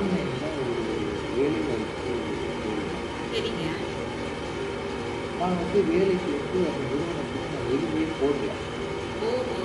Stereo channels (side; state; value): both; identical; correlation 1.00